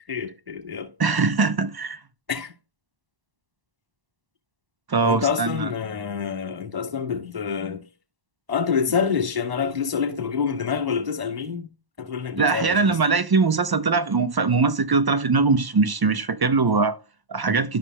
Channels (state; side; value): late; left; 1.0 ms